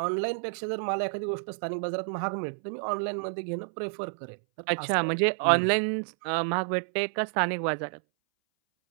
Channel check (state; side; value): silent; left; 58 dB below the other